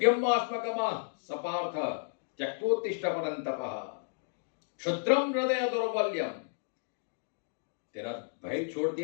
आत्मगमा सपार्थ त्यक्तोत्तिष्ठ परंतपः क्षुद्रम हृदय दौर्बल्यम, तेरा भय छोड़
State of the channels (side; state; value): right; silent; digital silence